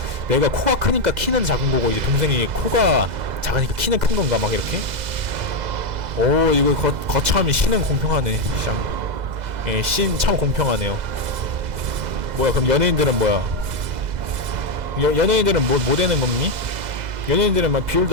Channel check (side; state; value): left; late; 2.0 ms